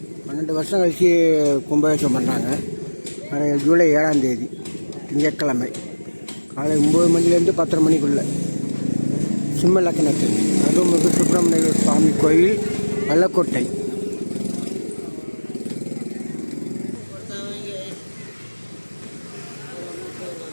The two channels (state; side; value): inverted; both; correlation -1.00